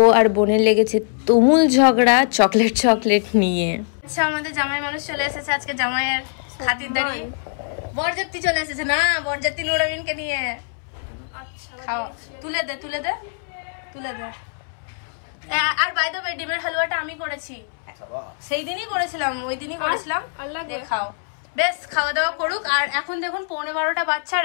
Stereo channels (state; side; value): silent; right; 64 dB below the other